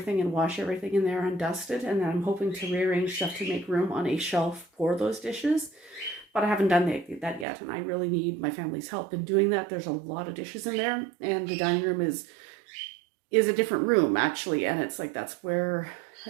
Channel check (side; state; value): left; drops out; at 7.5 s